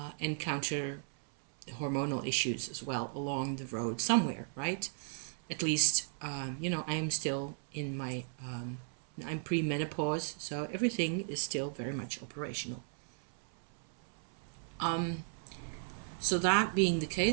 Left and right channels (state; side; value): silent; left; 54 dB below the other